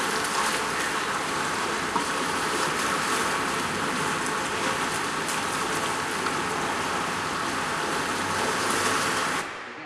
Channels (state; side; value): identical; both; correlation 1.00